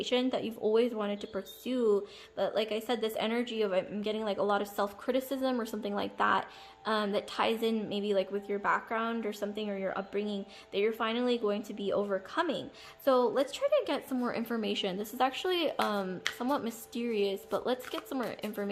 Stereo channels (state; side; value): identical; both; correlation 1.00